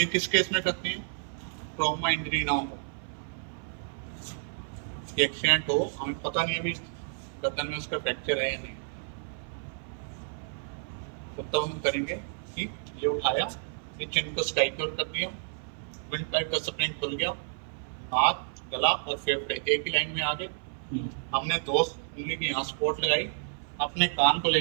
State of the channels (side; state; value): left; silent; 57 dB below the other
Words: किस केस में करते हैं, ट्रॉमा इंजरी ना हो, एक्सीडेंट हो, हमें पता नहीं अभी गर्दन में उसका फ्रैक्चर है या नहीं, तो तब हम करेंगे कि ये उठाया, ये चिन को स्काइक्योर कर दिया, विंड पाइप का स्प्रिंग खुल गया, हाथ, गला और फेफड़े एक ही लाइन में आ गए। हमने 2 उंगली की यहाँ स्पॉट लगाई, अपने कान को ले